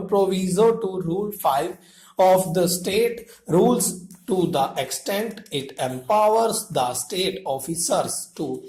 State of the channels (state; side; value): identical; both; correlation 1.00